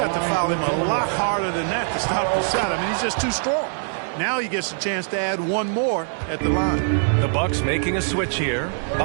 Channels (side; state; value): left; silent; digital silence